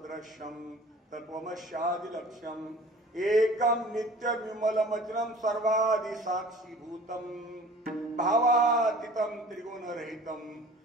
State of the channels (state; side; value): normal; both; correlation 0.46